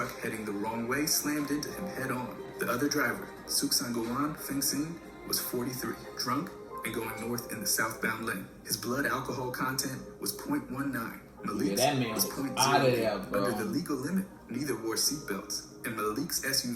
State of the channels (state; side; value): identical; both; correlation 1.00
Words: heading the wrong way slammed into him head-on. The other driver, Suksangolan Fengsin, was 43, drunk and going north in the southbound lane. His blood alcohol content was 0.19. Malik's was 0.08. Under the legal limit, neither wore seatbelts, and Malik's